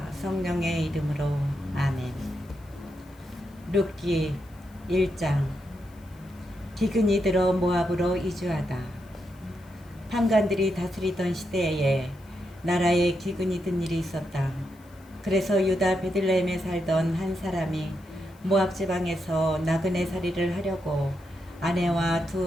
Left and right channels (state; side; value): noise; left; hiss, 30 dB below the sound